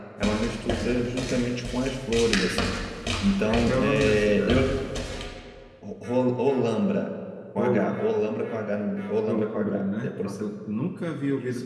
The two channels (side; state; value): both; identical; correlation 1.00